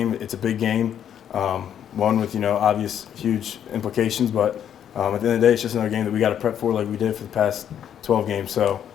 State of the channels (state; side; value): quieter; right; 9.4 dB